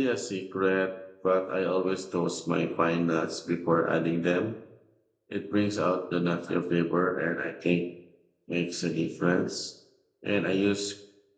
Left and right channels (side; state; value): both; identical; correlation 1.00